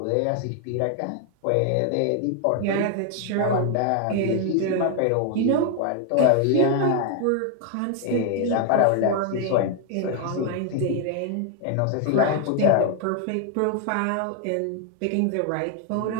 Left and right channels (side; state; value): both; different; correlation 0.00